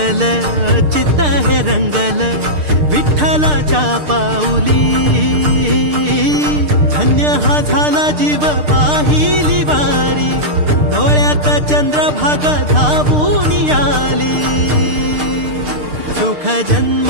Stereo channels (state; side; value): late; left; 6.6 ms